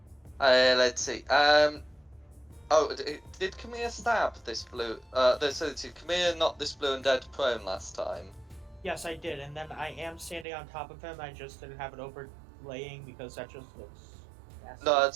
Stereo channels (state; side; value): drops out; left; at 10.5 s